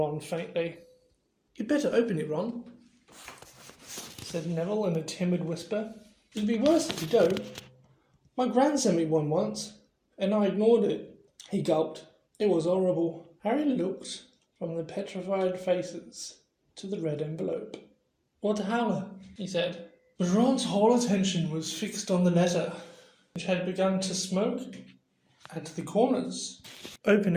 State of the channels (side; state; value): both; identical; correlation 1.00